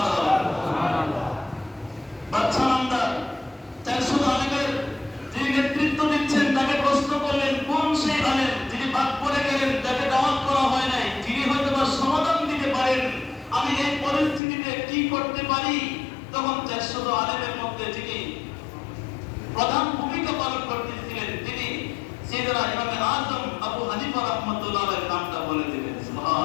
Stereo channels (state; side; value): drops out; right; at 14.4 s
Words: বাচ্চা নামদার 400 আলেমের যিনি নেতৃত্ব দিচ্ছেন, তাকে প্রশ্ন করলেন, কোন সেই আলেম যিনি বাদ পড়ে গেলেন, তাকে দাওয়াত করা হয় নাই, যিনি হয়তো সমাধান দিতে পারেন, আমি এই পরিস্থিতিতে কি করতে পারি? তখন 400 আলেমের মধ্যে যিনি প্রধান ভূমিকা পালন করতেছিলেন, তিনি সাইয়েদনা ইমাম আযম আবু হানিফা রাহমাতুল্লাহ আলাইহির নামটা বলে দিলেন।